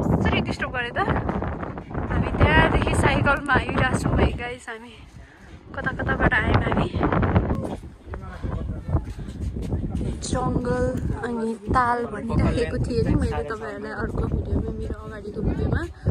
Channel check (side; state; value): both; identical; correlation 1.00